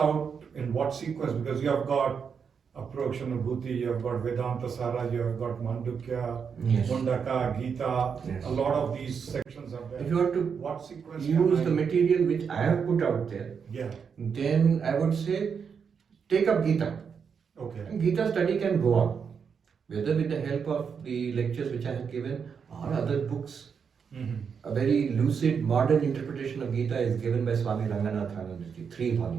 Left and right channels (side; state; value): left; quieter; 6.5 dB